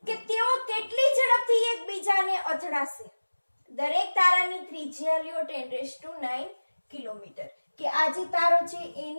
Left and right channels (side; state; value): both; inverted; correlation -1.00